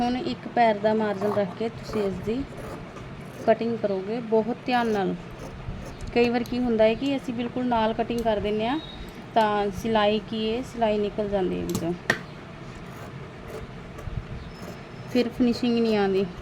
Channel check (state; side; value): identical; both; correlation 1.00